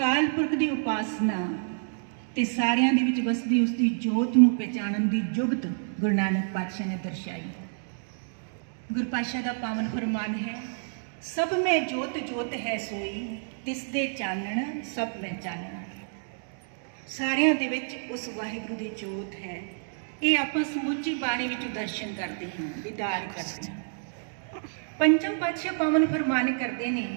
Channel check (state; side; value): silent; left; digital silence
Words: पुरख की उपासना ते सारियां दे विच वसदी उसकी जोत नूं पहचानन दी जुगत गुरु नानक पातशाह ने दर्शाई। गुरु पातशाह दा पावन फरमान है, सब में जोत जोत है सोई, तिस दे चानण सब में चानण। सारियां दे विच उस वाहिगुरू दी जोत है। ये आपां समुची बाणी विच दर्शन करते हैं, दीदार करते हैं। पंचम पातशाह पावन फरमान करते ने,